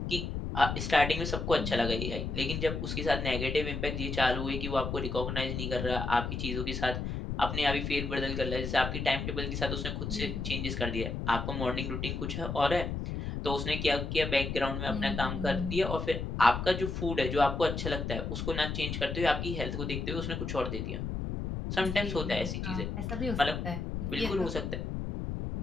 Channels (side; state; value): left; noise; rumble, 3 dB below the sound